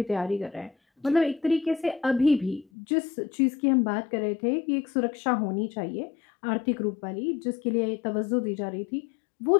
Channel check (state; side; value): drops out; right; at 2.7 s